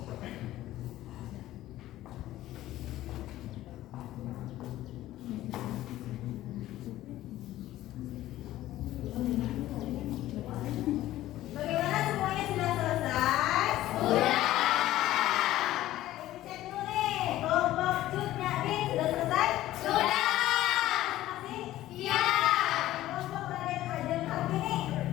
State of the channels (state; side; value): quieter; right; 14.8 dB